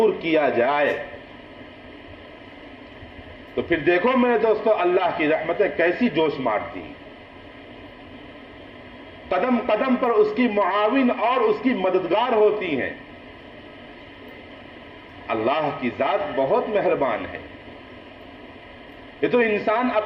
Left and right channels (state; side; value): identical; both; correlation 1.00